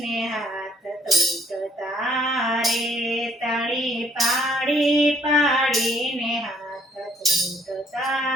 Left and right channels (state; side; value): normal; both; correlation 0.65